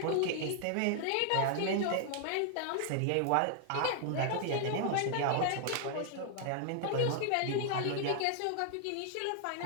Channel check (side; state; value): both; different; correlation -0.01